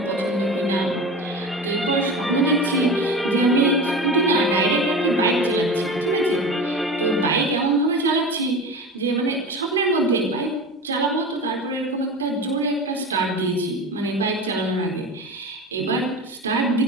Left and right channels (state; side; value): normal; both; correlation 0.30